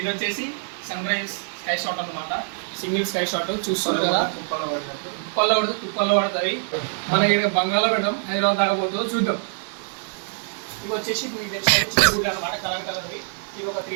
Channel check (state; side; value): silent; left; digital silence